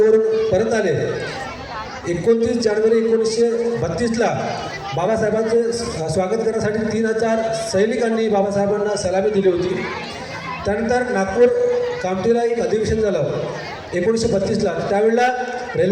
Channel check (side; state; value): both; identical; correlation 1.00